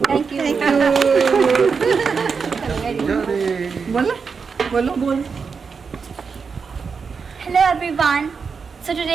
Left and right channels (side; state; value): left; quieter; 5.5 dB